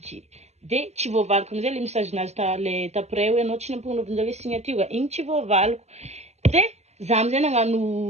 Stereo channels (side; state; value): left; late; 0.32 ms